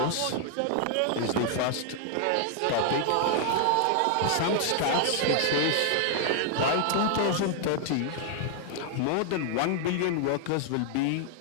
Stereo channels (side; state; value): both; different; correlation 0.00